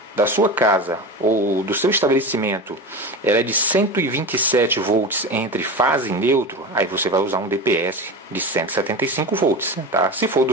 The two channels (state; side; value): normal; both; correlation 0.26